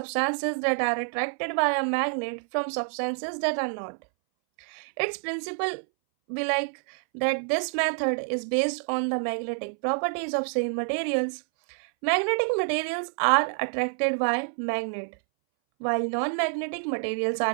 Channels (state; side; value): silent; left; 60 dB below the other